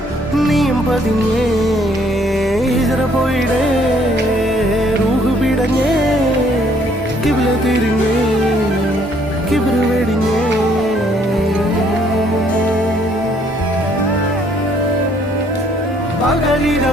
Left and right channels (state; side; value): normal; both; correlation 0.64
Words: നീയും പതിഞ്ഞേ ഹിജറ പോയിടേ റൂഹ് പിടഞ്ഞേ കിബില തിരിഞ്ഞേ കിബിറ് വെടിഞ്ഞേ